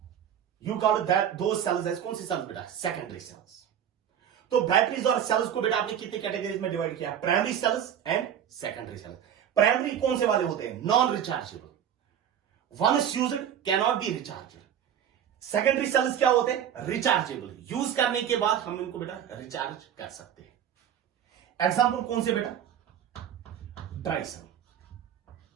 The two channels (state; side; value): quieter; left; 9.4 dB